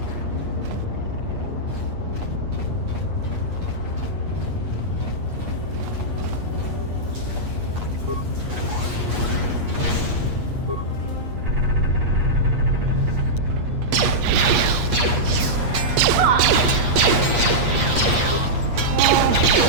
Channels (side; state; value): left; late; 8.4 ms